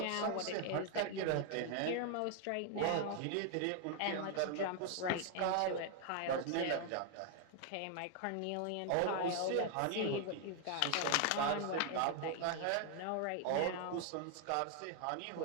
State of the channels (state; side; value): different; both; correlation 0.00